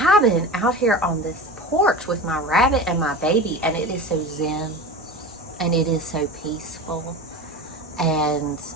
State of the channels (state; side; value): normal; both; correlation 0.30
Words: out here on this porch with my rabbit and my baby. And it is so zen. And it is so peaceful. And